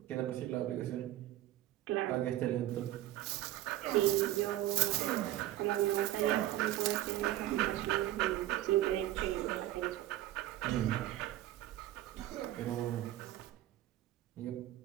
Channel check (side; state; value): left; quieter; 14.3 dB